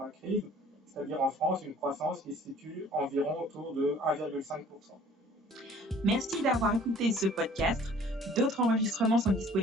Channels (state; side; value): normal; both; correlation 0.52